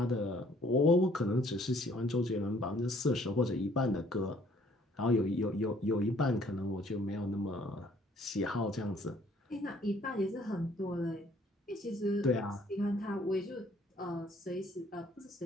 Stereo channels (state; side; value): normal; both; correlation 0.60